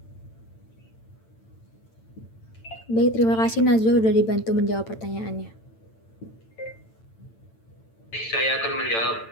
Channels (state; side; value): late; right; 8.9 ms